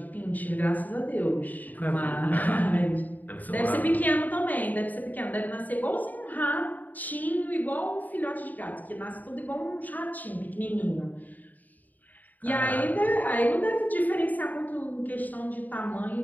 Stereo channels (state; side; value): late; right; 0.082 ms